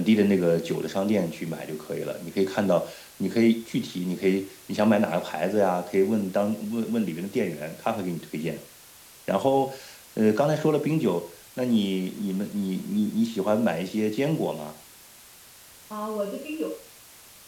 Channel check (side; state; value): both; identical; correlation 1.00